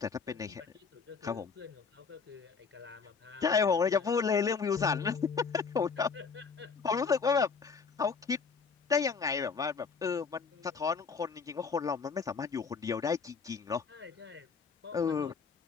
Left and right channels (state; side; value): quieter; right; 5.3 dB